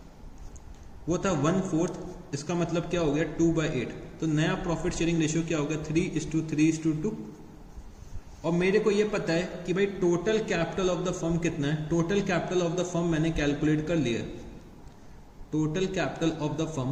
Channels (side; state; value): both; identical; correlation 1.00